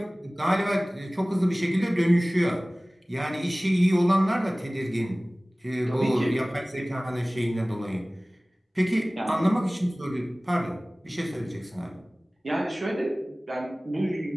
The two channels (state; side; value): normal; both; correlation 0.98